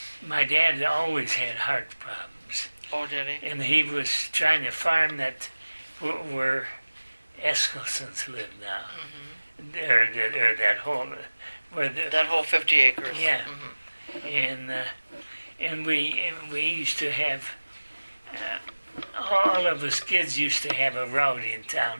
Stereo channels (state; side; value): inverted; both; correlation -1.00